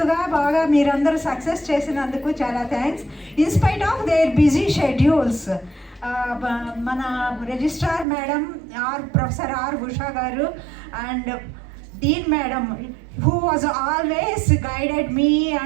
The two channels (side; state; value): left; drops out; at 8.1 s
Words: బాగా మీరందరూ సక్సెస్ చేసినందుకు చాలా thanks. In spite of their busy schedules, మన registrar madam professor R Usha గారు and dean madam who was always guided me